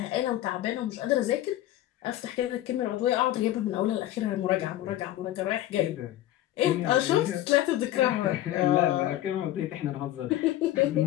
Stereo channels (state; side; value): quieter; right; 13.8 dB